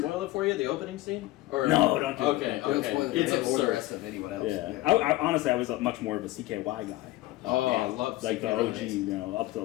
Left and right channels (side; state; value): right; quieter; 17.5 dB